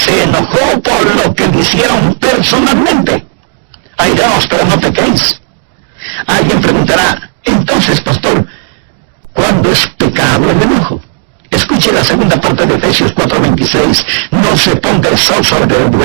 enojó por lo que le hicieron personalmente. Airaos, pero no pequéis. Alguien preguntará, entonces, pastor, ¿cuándo es pecado el enojo? Escuche la segunda parte de Efesios 4:26. No se ponga el sol sobre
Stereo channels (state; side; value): silent; left; digital silence